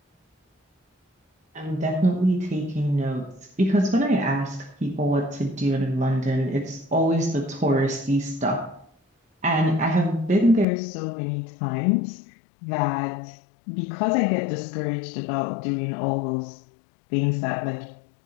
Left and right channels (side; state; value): right; drops out; at 10.7 s